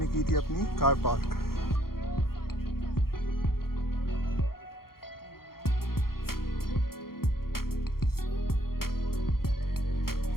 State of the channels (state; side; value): late; right; 0.93 ms